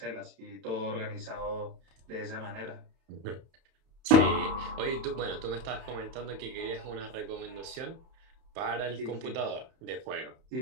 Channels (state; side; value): late; left; 31 ms